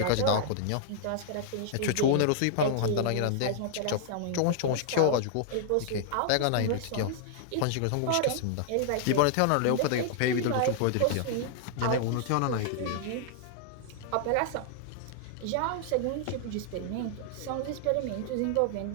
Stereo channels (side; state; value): both; different; correlation -0.01